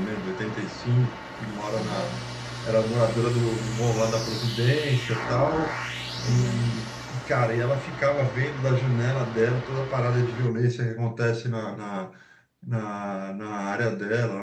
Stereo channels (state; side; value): identical; both; correlation 1.00